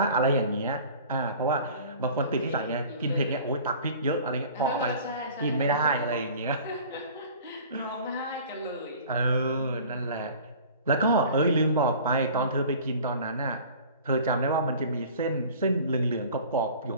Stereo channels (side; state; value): both; inverted; correlation -0.45